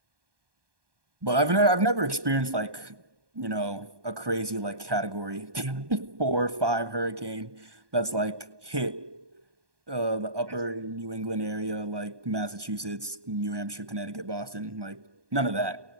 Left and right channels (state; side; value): late; left; 1.2 ms